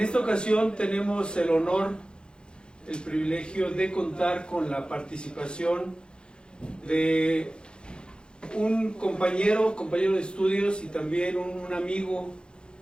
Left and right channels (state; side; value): late; right; 0.051 ms